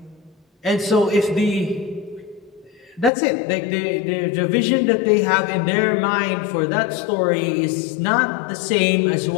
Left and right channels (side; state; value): right; drops out; at 3.1 s